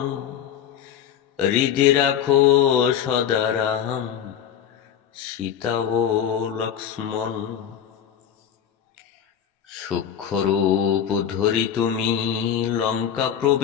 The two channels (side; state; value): right; quieter; 9.1 dB